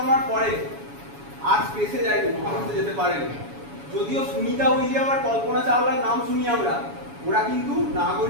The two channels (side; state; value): left; late; 7.1 ms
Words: পরে আর স্পেসে যায়নি, মহাকাশে যেতে পারেনি। যদিও সুনিতা উইলিয়াম আর কল্পনা চাওলার নাম শুনি আমরা, ওরা কিন্তু